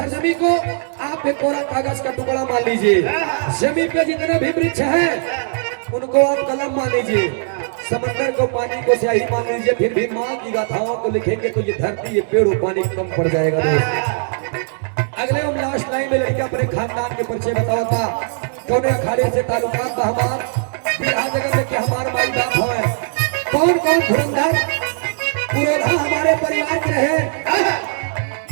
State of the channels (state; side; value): silent; left; digital silence